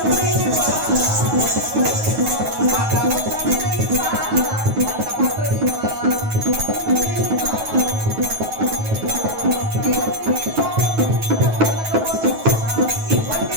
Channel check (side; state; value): left; late; 9.3 ms